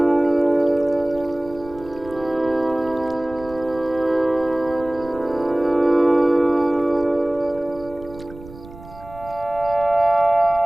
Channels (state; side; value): noise; right; rumble, 18 dB below the sound